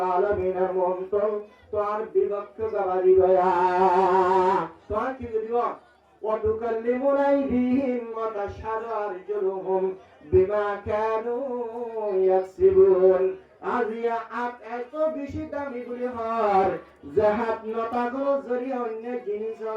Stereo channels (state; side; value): identical; both; correlation 1.00